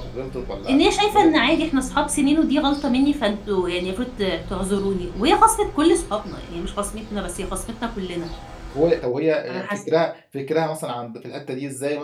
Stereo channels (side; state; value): both; identical; correlation 1.00